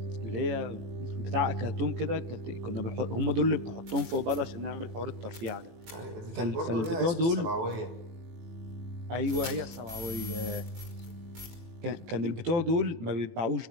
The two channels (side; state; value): left; late; 18 ms